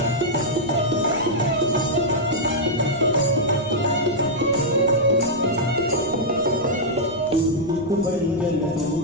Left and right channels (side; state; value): left; noise; rumble, 20 dB below the sound